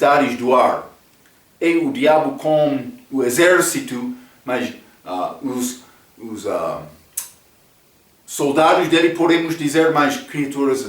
do ar é o diabo com o exército, mas os soldados dele, podemos dizer, mais criaturas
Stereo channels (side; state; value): both; identical; correlation 1.00